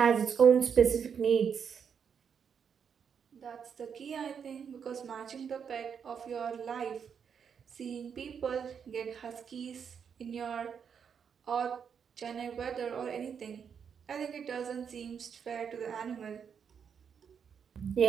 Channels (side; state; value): left; quieter; 7.1 dB